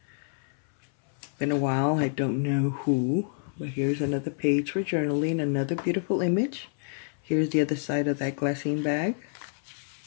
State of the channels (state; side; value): silent; right; 59 dB below the other